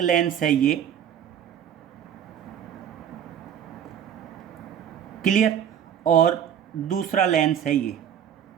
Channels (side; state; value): left; quieter; 9.2 dB